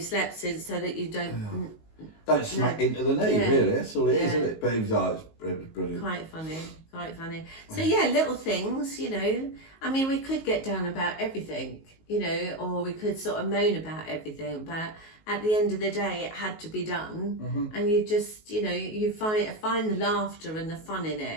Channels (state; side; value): late; right; 19 ms